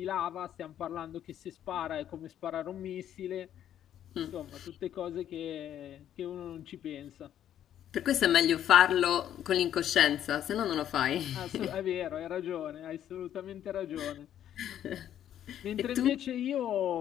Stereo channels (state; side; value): quieter; right; 10.7 dB